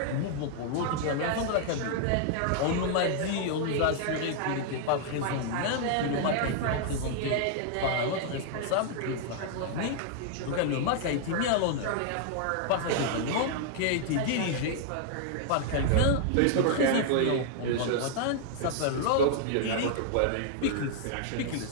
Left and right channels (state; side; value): different; both; correlation -0.01